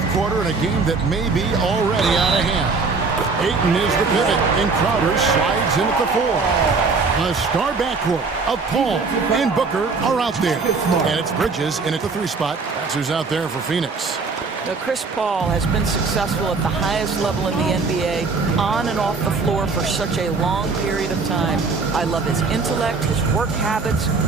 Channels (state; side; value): quieter; left; 4.4 dB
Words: quarter in a game that may be already out of hand. Ayton is the pivot, and Crowder slides in at the 4. A star backcourt of Paul and Booker are out there. And it's Bridges in at the 3 spot. That's who's out there for Phoenix. Now, Chris Paul has been successful at the highest level in the NBA, on and off the floor for such a long period of time. I love his intellect, his work habits,